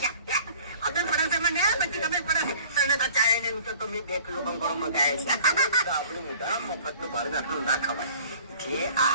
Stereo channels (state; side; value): inverted; both; correlation -0.49